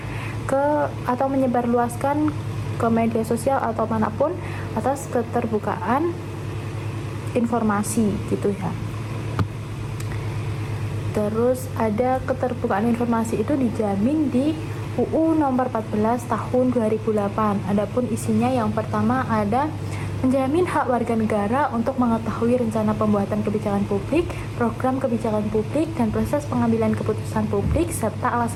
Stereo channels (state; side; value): identical; both; correlation 1.00